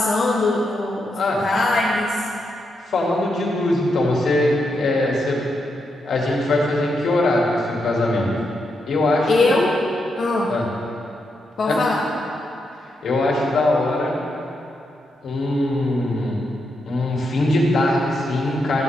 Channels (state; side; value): normal; both; correlation 0.83